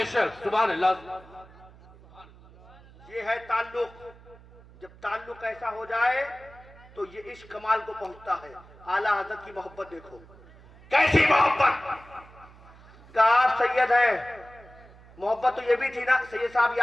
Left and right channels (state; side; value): noise; right; hum, 23 dB below the sound